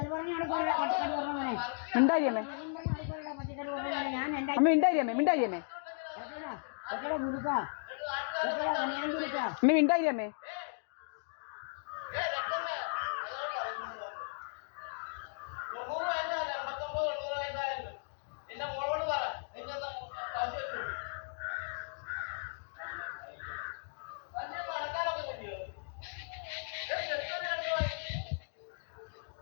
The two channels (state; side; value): silent; right; digital silence